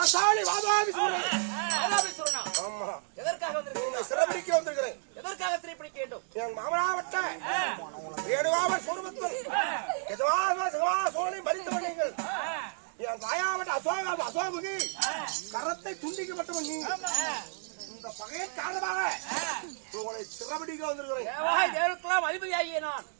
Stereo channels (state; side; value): silent; left; 57 dB below the other